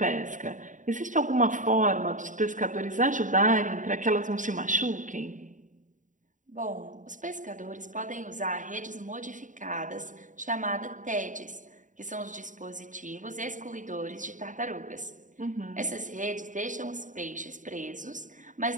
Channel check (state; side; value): late; left; 0.37 ms